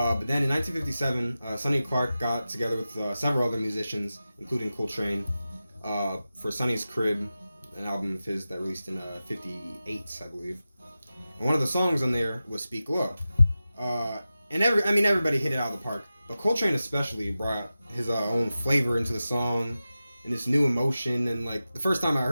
then in 1957, Sonny Clark got together with several other musicians, including Coltrane, for Sonny's Crib, an album of his that released in '58, I believe. And one of the songs on there was "Speak Low," and everybody hit it out of the park. But Coltrane especially brought his own flavor into the song and this new emotion. And like the first time I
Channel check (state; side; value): inverted; both; correlation -0.94